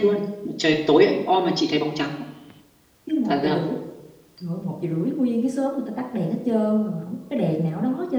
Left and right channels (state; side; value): identical; both; correlation 1.00